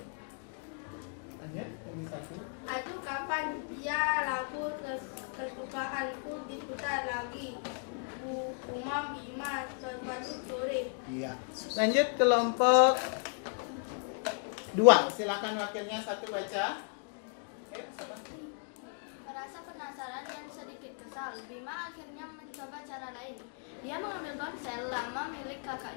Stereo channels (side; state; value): right; silent; 54 dB below the other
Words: Lanjut, ini satu. Aduh, kapan ya lagu kesukaanku diputar lagi? Umam Bima suatu sore. Iya. Lanjut kelompok 2. Silakan wakilnya satu baca. Merasa penasaran dan sedikit kesal, Bima akhirnya mencoba cara lain. Dia mengambil ponsel lama milik